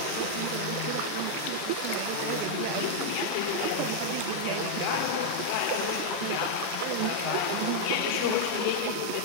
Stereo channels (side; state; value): both; different; correlation 0.00